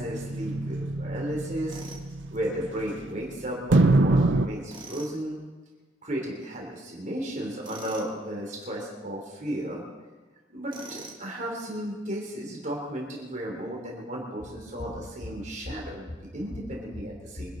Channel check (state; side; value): normal; both; correlation 0.69